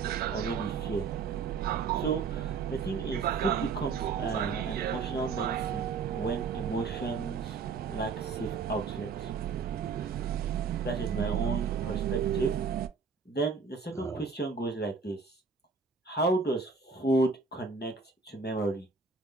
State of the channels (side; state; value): left; quieter; 5.0 dB